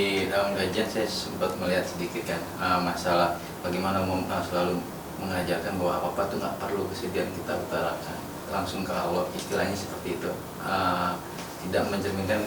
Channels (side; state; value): both; identical; correlation 1.00